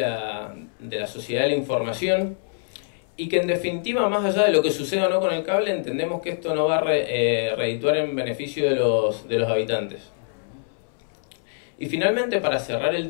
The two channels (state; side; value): silent; right; 62 dB below the other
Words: sociedad de la información, y que en definitiva, más allá de lo que suceda o no con el cable, entendemos que esto no va a redituar en beneficio de los habitantes. Y finalmente, para cerrar el